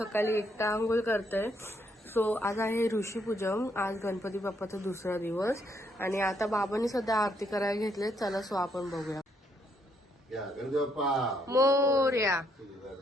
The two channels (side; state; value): both; normal; correlation 0.73